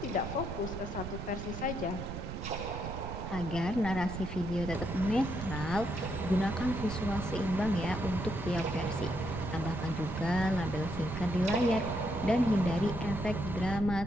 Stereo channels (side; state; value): right; noise; rumble, 7 dB below the sound